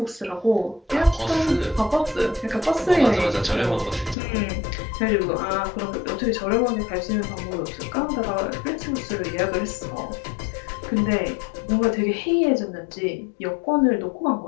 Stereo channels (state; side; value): drops out; right; at 4.2 s